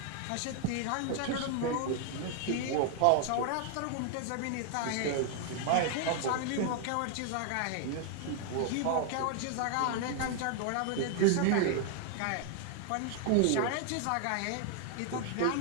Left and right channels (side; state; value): both; different; correlation 0.00